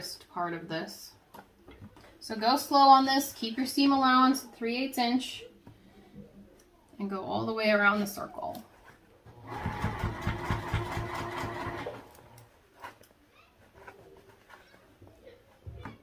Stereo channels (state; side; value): identical; both; correlation 1.00